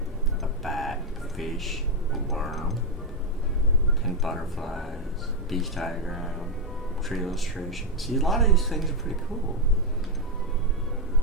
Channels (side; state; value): both; normal; correlation 0.03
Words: A bat, a fish, a worm, 10 butterflies, beach diagram, tree illustration. See, a lot of these things are pretty cool.